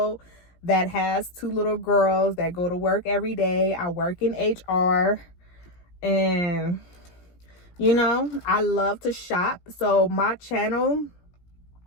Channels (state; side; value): late; right; 17 ms